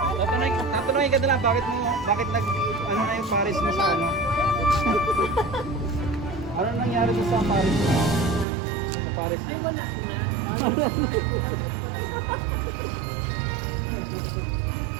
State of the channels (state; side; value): drops out; left; at 8.5 s